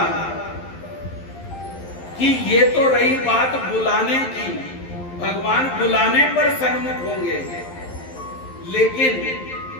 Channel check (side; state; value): right; late; 11 ms